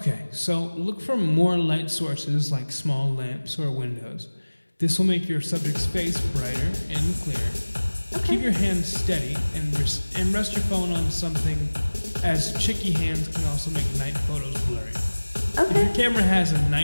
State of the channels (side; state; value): both; inverted; correlation -1.00